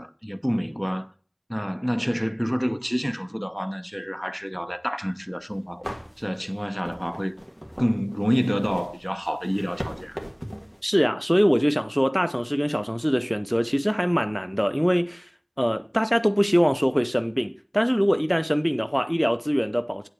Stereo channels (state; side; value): identical; both; correlation 1.00